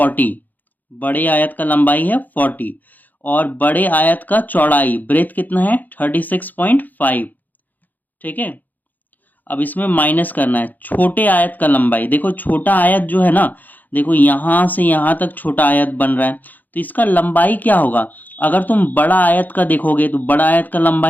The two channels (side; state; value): right; late; 0.084 ms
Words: बड़े आयत का लंबाई है 40 और बड़े आयत का चौड़ाई ब्रेथ कितना है 36.5। ठीक है, अब इसमें माइनस करना है छोटे आयत का लंबाई, देखो छोटा आयत जो है ना, देखो यहां से यहां तक छोटा आयत बन रहा है, तो इसका लंबाई क्या होगा, अगर तुम बड़ा आयत का देखोगे तो बड़ा आयत का